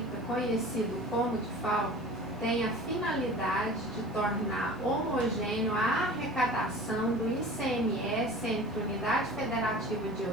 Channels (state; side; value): normal; both; correlation 0.40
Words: conhecido como DIFAL, tem a finalidade de tornar homogêneo a arrecadação do ICMS entre unidade federativa de